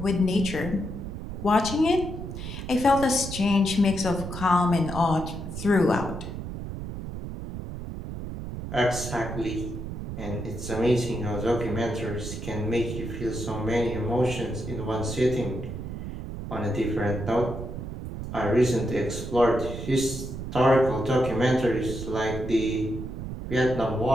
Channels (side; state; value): right; noise; rumble, 7 dB below the sound